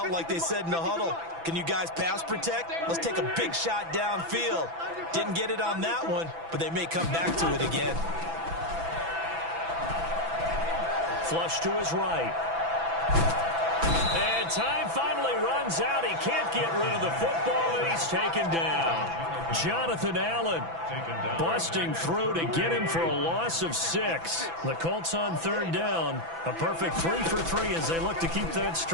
like they said in the huddle, can you guys pass protect? Let's take a big shot downfield. Didn't get it on that one, but they may come back to it again. Flush to his right. And And time finally runs out. He can't get rid of the football, and he's taken down. Jonathan Allen busting through to get him for a loss of 6. The Colts on third down. A perfect 3 for 3 as they look to keep that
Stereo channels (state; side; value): late; left; 6.0 ms